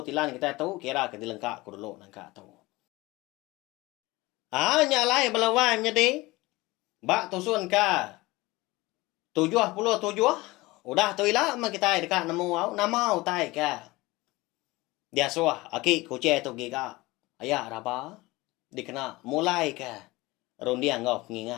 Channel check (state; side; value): quieter; right; 21.1 dB